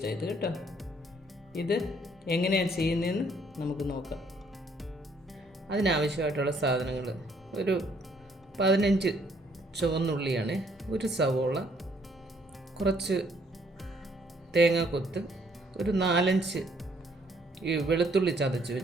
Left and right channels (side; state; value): both; normal; correlation 0.66